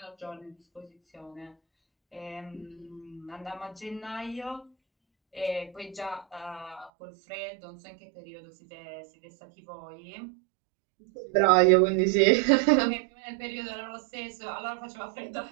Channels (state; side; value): drops out; left; at 6.9 s